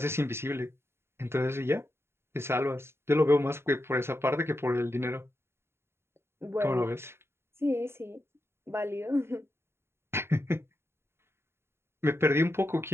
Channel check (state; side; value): late; left; 0.12 ms